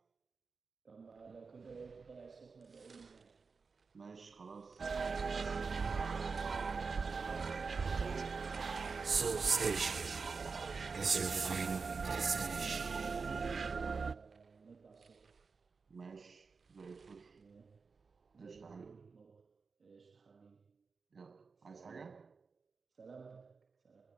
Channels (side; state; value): left; quieter; 4.8 dB